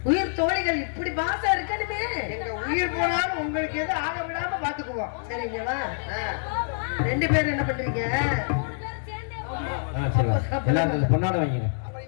உயிர் தோழிகள் இப்படி பாசம் இருக்கணுமே. எங்க உயிர் போனாலும் உங்களுக்கு எதுவும் ஆக விடாம பாத்துக்குவோம். சரிங்களா? 2 பேரும் என்ன பண்றீங்க? 3 பேரும் சேர்ந்தே போறோம். சரி எல்லாரும் பொன்னாட வாங்கிங்க. அப்புறம்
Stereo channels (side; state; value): right; silent; digital silence